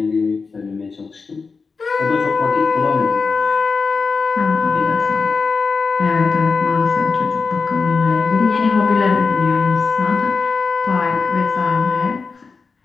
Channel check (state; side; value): quieter; right; 4.7 dB